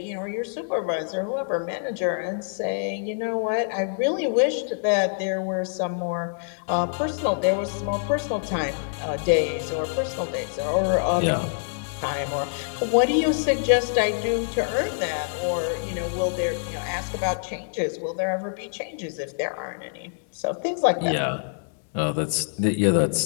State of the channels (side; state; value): right; silent; digital silence